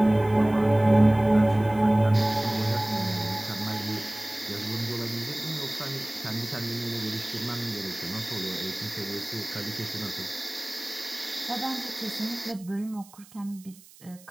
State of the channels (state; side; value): noise; right; hiss, 24 dB below the sound